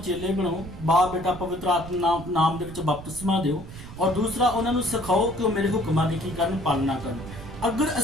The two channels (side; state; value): right; noise; rumble, 13 dB below the sound